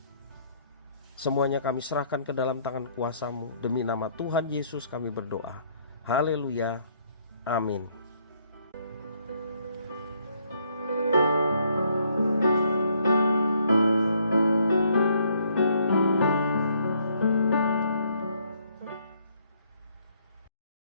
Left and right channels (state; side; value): inverted; both; correlation -0.67